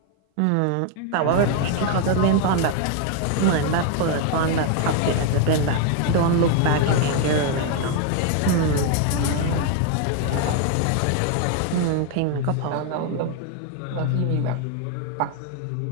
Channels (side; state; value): both; different; correlation 0.01